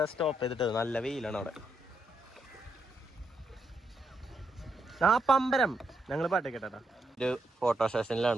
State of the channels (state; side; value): normal; both; correlation 0.80